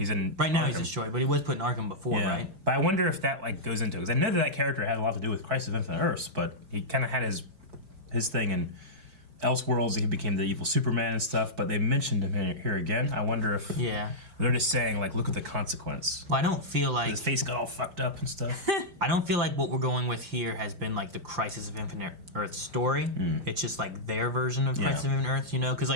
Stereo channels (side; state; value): left; late; 5.0 ms